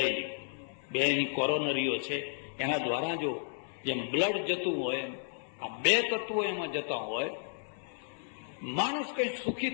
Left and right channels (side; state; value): right; silent; 55 dB below the other